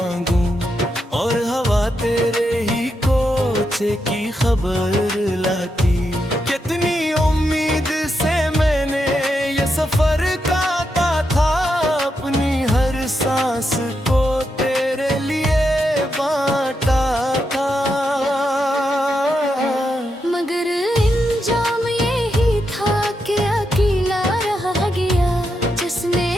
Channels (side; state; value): both; normal; correlation 0.84